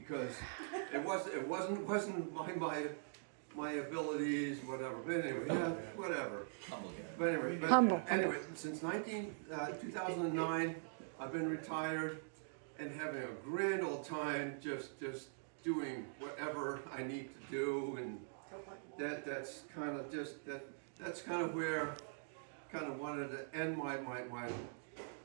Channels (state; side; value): silent; left; digital silence